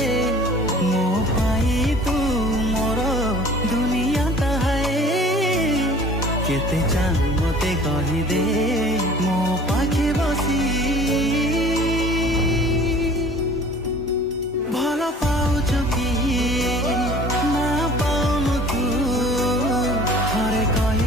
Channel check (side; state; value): both; normal; correlation 0.47